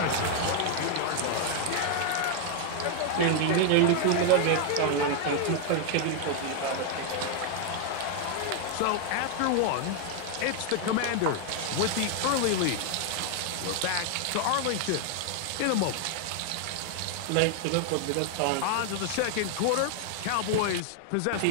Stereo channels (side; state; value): both; different; correlation 0.00